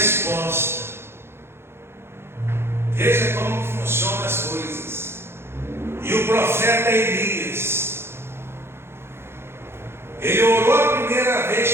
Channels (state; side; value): late; left; 0.12 ms